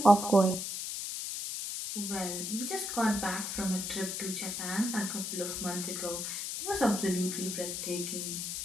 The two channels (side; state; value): left; noise; hiss, 4 dB below the sound